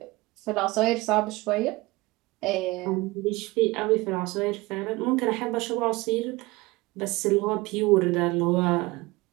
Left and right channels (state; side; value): quieter; left; 21.8 dB